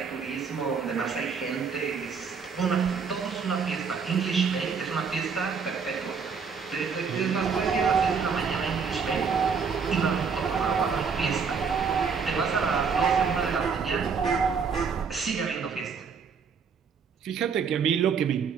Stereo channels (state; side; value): quieter; left; 5.9 dB